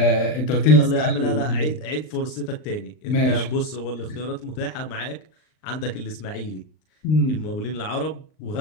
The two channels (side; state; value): right; late; 39 ms